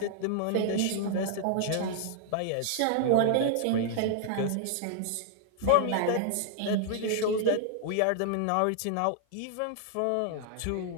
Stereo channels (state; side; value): different; both; correlation -0.01